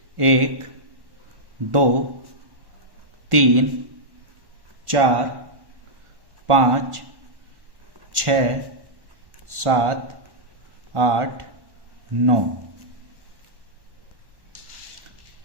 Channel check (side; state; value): left; late; 1.1 ms